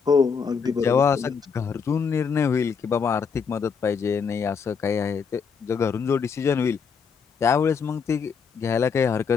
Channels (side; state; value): right; quieter; 6.0 dB